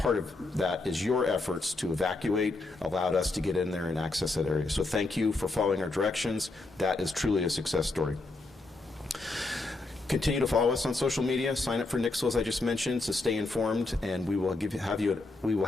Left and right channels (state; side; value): quieter; right; 3.2 dB